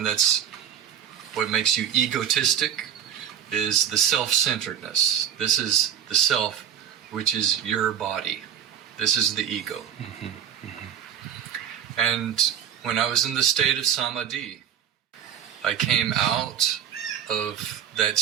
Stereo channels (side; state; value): left; quieter; 9.3 dB